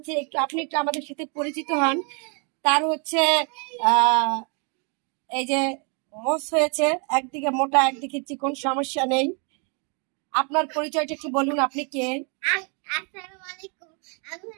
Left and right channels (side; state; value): left; quieter; 36.8 dB